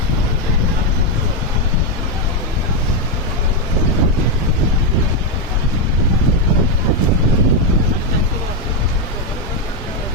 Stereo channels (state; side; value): normal; both; correlation 0.03